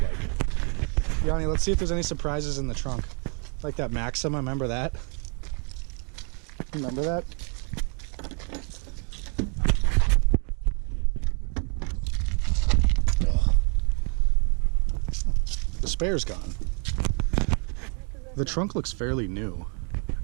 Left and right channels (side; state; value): left; quieter; 39.7 dB